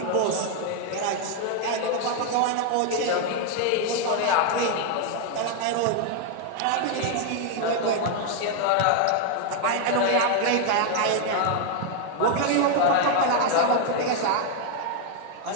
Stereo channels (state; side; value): different; both; correlation 0.00